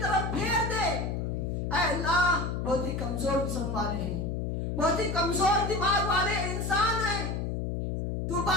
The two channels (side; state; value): left; noise; hum, 2 dB below the sound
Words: طرف پھیر دے، اے اللہ بہت ہی کمزور قسم والے ہیں، بہت ہی کمزور دماغ والے انسان ہیں، تو